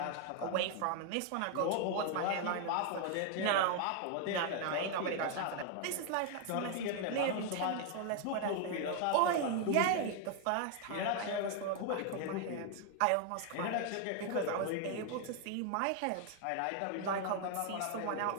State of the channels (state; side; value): different; both; correlation 0.00